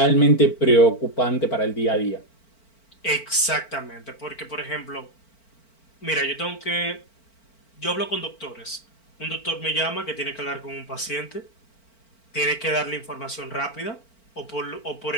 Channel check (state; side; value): late; right; 4.4 ms